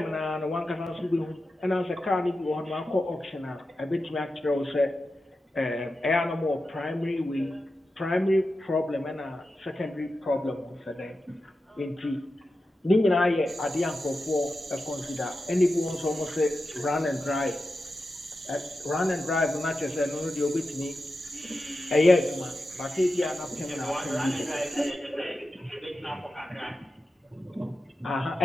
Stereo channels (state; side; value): normal; both; correlation 0.91